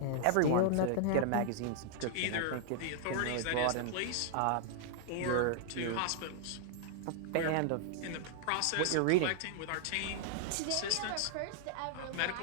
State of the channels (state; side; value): different; both; correlation -0.01